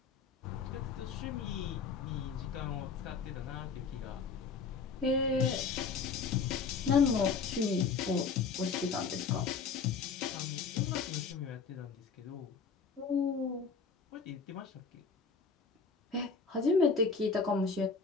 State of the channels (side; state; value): right; quieter; 5.2 dB